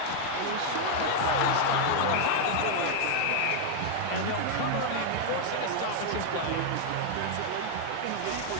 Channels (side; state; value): both; different; correlation 0.00